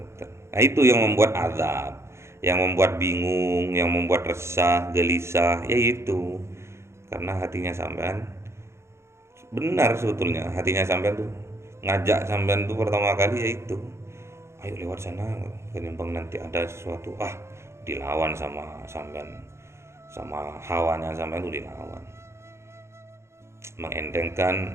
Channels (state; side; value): late; left; 0.13 ms